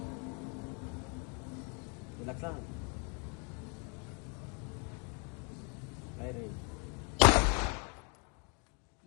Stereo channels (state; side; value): quieter; right; 35.9 dB